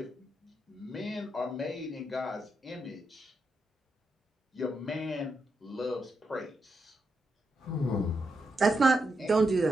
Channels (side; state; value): both; normal; correlation 0.83